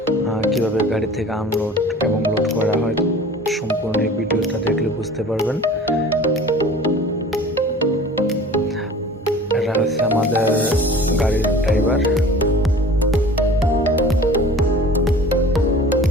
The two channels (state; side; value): normal; both; correlation 0.44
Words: কিভাবে গাড়ি থেকে আনলোড এবং লোড করা হয় সম্পূর্ণ এই ভিডিওটা দেখলে বুঝতে পারবেন। এরা হচ্ছে আমাদের গাড়ির ড্রাইভার।